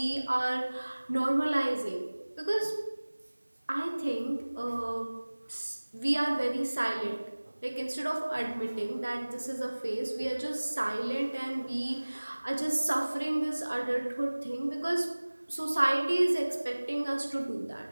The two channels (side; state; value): both; inverted; correlation -1.00